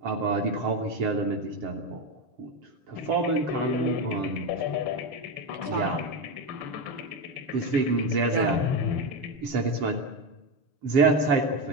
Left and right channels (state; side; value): late; left; 6.8 ms